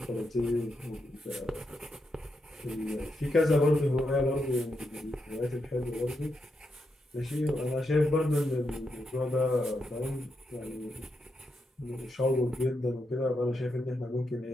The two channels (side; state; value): both; normal; correlation 0.83